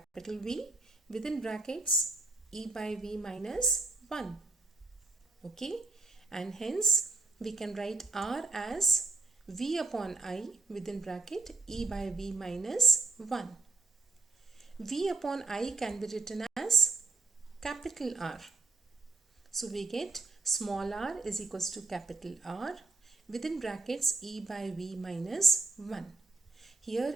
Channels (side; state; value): left; quieter; 3.6 dB